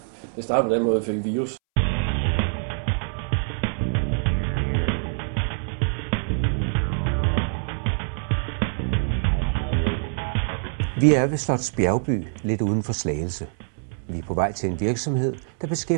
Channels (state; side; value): silent; left; 62 dB below the other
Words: det startede på den måde, vi fik virus. Vi er ved Slots Bjergby, lidt uden for Slagelse. Vi er på vej til en virksomhed, der